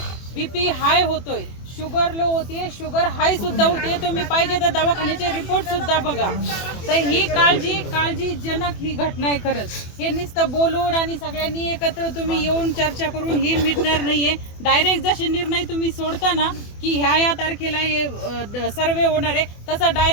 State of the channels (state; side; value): late; right; 24 ms